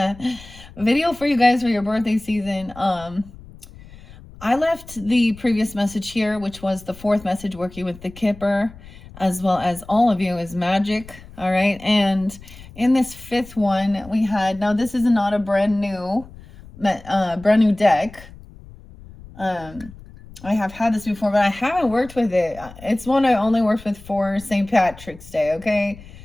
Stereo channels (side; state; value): left; noise; rumble, 19 dB below the sound